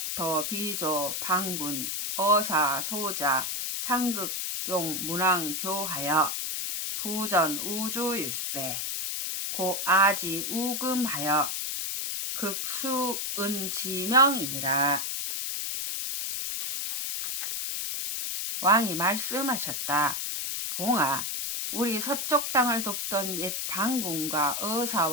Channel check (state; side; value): noise; left; hiss, 2 dB below the sound